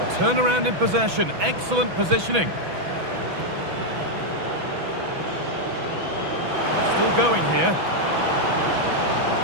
A turnaround in possession. Excellent positioning. Still going here.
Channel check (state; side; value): late; left; 6.0 ms